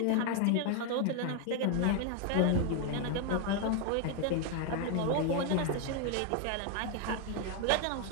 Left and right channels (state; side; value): different; both; correlation 0.01